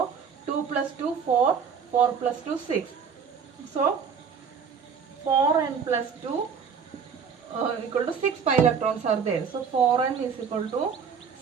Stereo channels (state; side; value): quieter; left; 6.5 dB